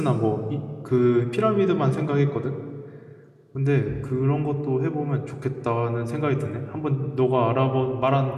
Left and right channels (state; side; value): identical; both; correlation 1.00